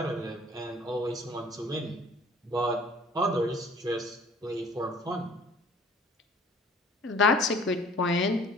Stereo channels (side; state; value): both; normal; correlation 0.52